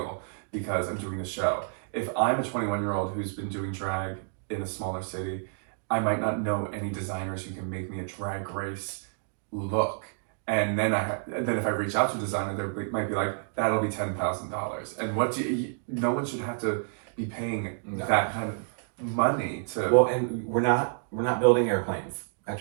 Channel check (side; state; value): left; silent; digital silence